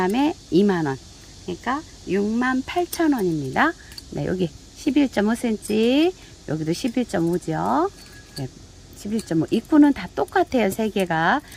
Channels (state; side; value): identical; both; correlation 1.00